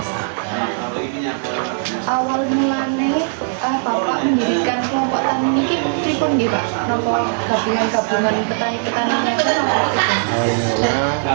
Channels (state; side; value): silent; left; digital silence